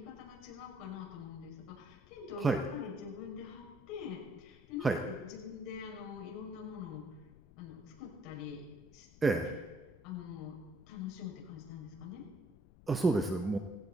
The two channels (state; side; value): noise; left; rumble, 21 dB below the sound